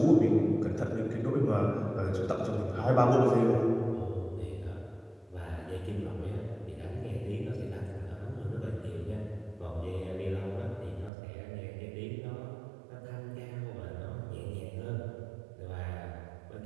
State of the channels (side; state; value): left; drops out; at 11.1 s